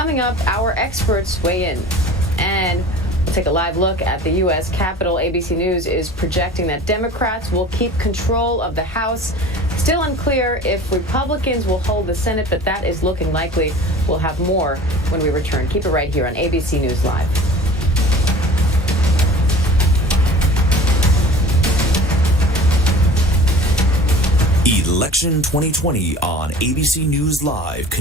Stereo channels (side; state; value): both; normal; correlation 0.42